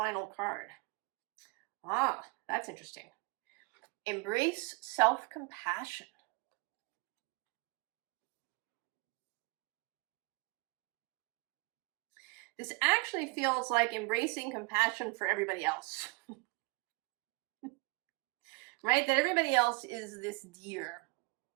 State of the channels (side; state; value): left; quieter; 29.0 dB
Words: card. Ah, that's interesting. Embrace self-compassion. This actually feels like embracing compassion for everybody else. Right? That everybody else is this deer.